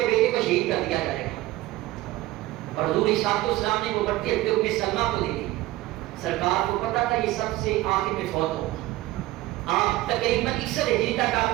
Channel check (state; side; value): quieter; left; 17.3 dB